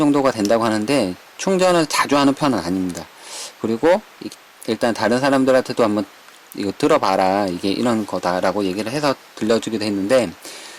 된다고 하는데 충전을 자주 하는 편은 아닙니다. 그리고 일단 다른 사람들한테도 한번 이거 들어봐라, 이게 이런 거다라고 얘기를 해서 들려주기도 했는데,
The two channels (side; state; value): both; identical; correlation 1.00